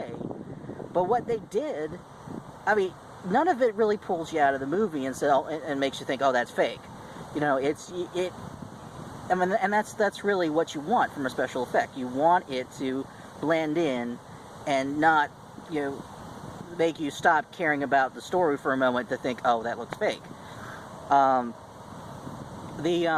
But what they did, I mean, none of it really pulls you out of the movie and makes you think, oh, that's fake. And that's really what you want from a special effect. You want it to blend in and not make you stop caring about the story for a moment to think, oh, that looks fake. I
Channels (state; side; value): identical; both; correlation 1.00